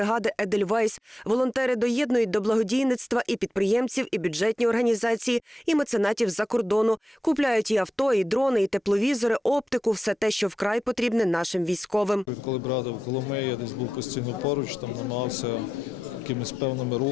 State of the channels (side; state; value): both; normal; correlation 0.88